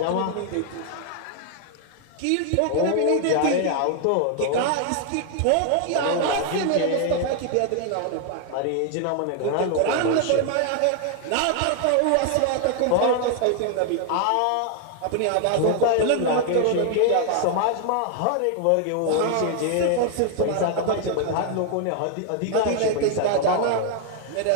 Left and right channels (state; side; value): different; both; correlation 0.00